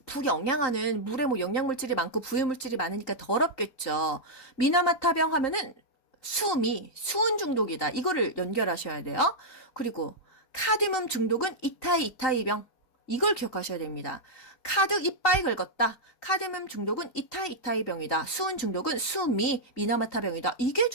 부영양화는 물에 영양물질이 많고 부유물질이 많으니까 더럽겠죠. 미나마타병 하면은 수은 중독이다. 이거를 연결하셔야 돼요. 그리고 카드뮴 중독은 이타이병. 이걸 기억하셔야 됩니다. 카드 이빠이 긁었다. 카드뮴 중독은 이타이병이다. 수은 중독은 미나마타병이다. 이게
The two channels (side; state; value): right; late; 3.9 ms